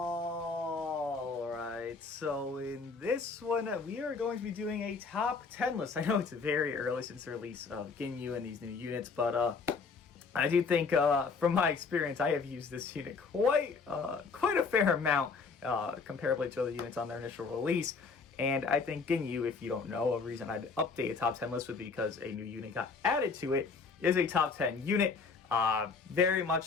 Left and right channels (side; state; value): right; quieter; 4.8 dB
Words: so in this one, we are going to be doing a top 10 list. I know it's very early since the release of Ginyu and these new units, but I do think, from my experience, I have used this unit quite a fair amount, comparably to other units on their initial release. And I think Ginyu, if you don't know, a reason I'd update a top 10 list would be because a new unit got added to it, is a top 10 unit. Very much